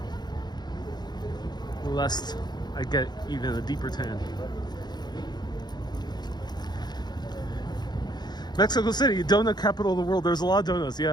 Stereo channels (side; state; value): right; late; 0.20 ms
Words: Lest I get even a deeper tan. Mexico City, donut capital of the world. There's a lot of donuts.